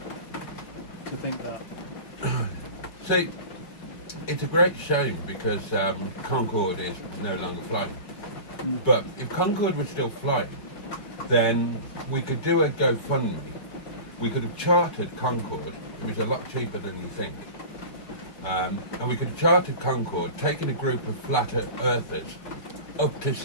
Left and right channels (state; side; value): late; right; 5.6 ms